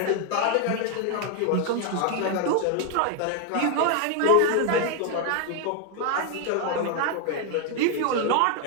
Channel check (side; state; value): both; different; correlation 0.01